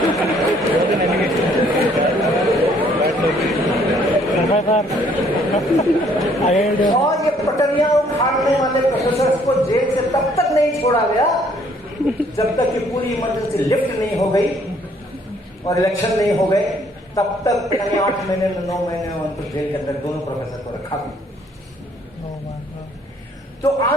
और ये पटरियां उखाड़ने वाले प्रोफेसर को जेल से तब तक नहीं छोड़ा गया जब तक कि पूरी इमरजेंसी लिफ्ट नहीं हो गई और इलेक्शन नहीं हो गए, तब तक 8 महीने 9 महीने उनको जेल के अंदर दोनों प्रोफेसर को रखा गया। तो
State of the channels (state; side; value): normal; both; correlation 0.63